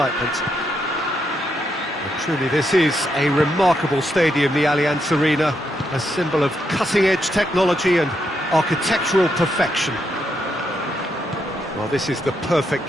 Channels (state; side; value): normal; both; correlation 0.80